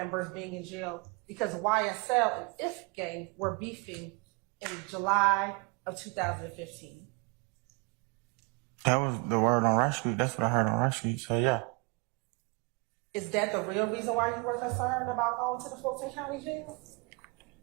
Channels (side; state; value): left; quieter; 30.7 dB